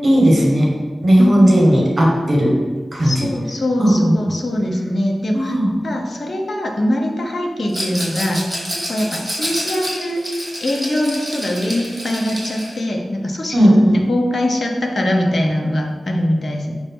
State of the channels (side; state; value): both; normal; correlation 0.96